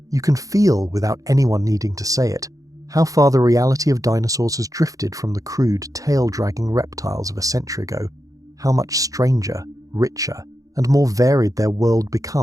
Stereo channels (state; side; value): late; left; 0.17 ms